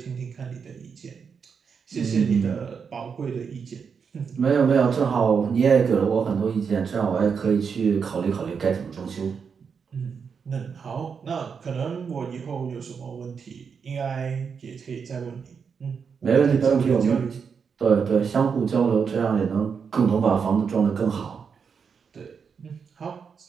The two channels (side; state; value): left; quieter; 6.2 dB